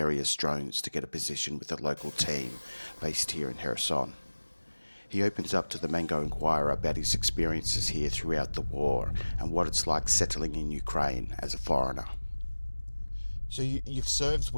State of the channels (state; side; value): inverted; both; correlation -1.00